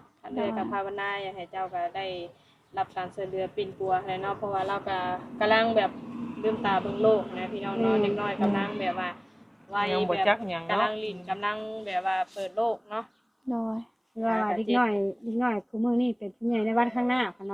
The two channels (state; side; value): identical; both; correlation 1.00